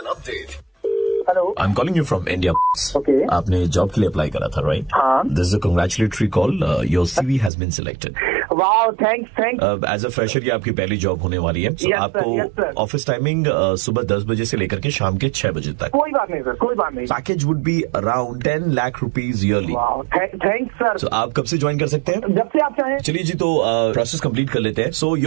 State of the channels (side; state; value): left; drops out; at 7.5 s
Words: update. Hello, I'm calling you from India. Okay. आपने जॉब के लिए अप्लाई करा था, राइट? हाँ। This is a congratulatory call. Your CV has been selected. Wow, thanks. As a fresher ये आपकी पहली job होने वाली है। So Yes, sir, आपको yes, sir. ऑफिस टाइमिंग सुबह 10 बजे से लेकर के शाम के 6 बजे तक। कोई बात नहीं सर, कोई बात नहीं। Package would be around 10 lakh rupees yearly. Wow, thanks sir. So आप कब से ज्वाइन कर सकते हैं? जब से आप चाहें। चलिए जी, तो प्रोसेस कंप्लीट कर लेते हैं। So